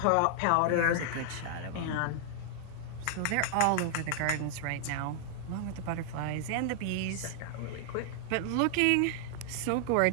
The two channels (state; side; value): different; both; correlation -0.01